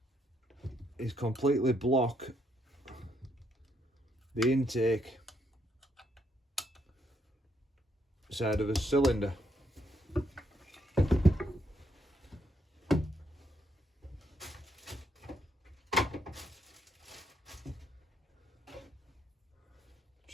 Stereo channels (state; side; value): normal; both; correlation 0.74